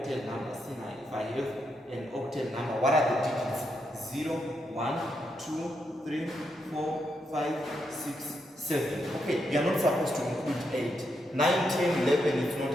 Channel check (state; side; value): normal; both; correlation 0.81